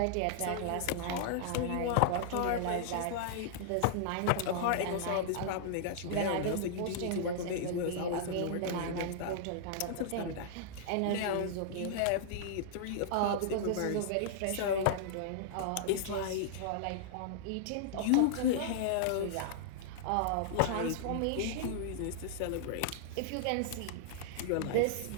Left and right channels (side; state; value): both; different; correlation -0.01